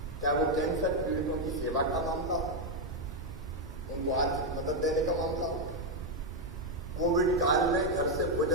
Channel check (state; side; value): normal; both; correlation 0.02